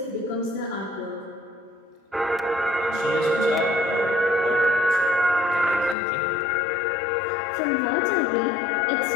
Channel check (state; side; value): drops out; right; at 6.0 s